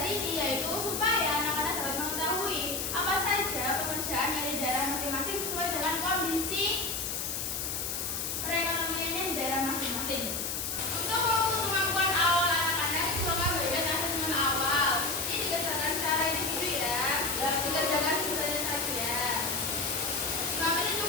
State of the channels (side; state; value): left; noise; hiss, 2 dB below the sound